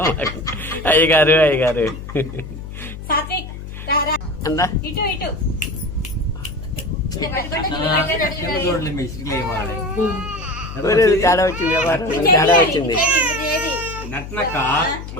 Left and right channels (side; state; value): left; noise; hum, 11 dB below the sound